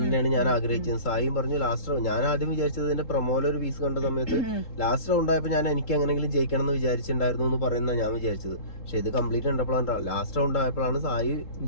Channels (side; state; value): right; late; 3.8 ms